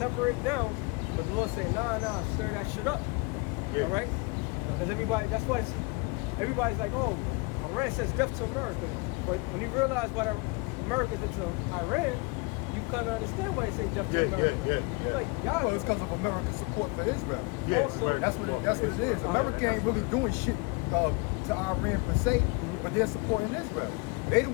it down, but the Lord say, nah, stir that shit up. Yeah. All right? Because that's why everybody's like, oh, Iran says death to America. But when you realize what America did to Iran, you kind of understand why they say death to America. Yeah. You're like, y'all. Well, it's because of America's support for Israel. Yeah, Also, That's what it is. America ain't really doing shit to Iran per se, but they're supporting Israel. They the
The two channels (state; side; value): quieter; right; 27.9 dB